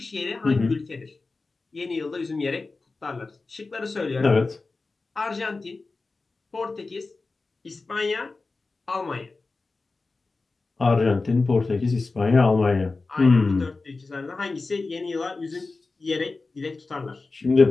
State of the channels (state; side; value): quieter; right; 3.7 dB